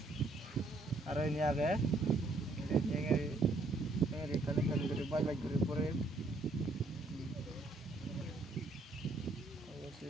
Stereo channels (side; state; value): left; quieter; 3.1 dB